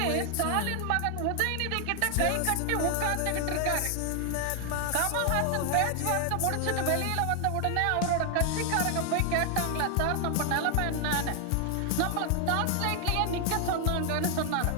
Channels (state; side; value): different; both; correlation 0.00